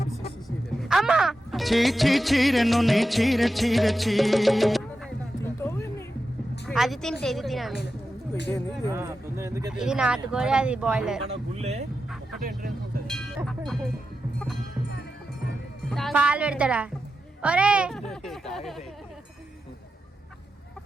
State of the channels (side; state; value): both; normal; correlation 0.90